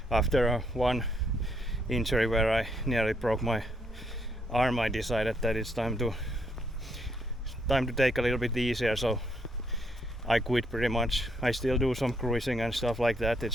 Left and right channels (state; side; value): normal; both; correlation 0.74